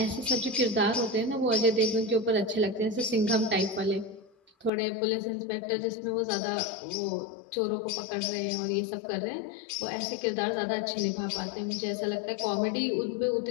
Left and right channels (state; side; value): drops out; right; at 4.7 s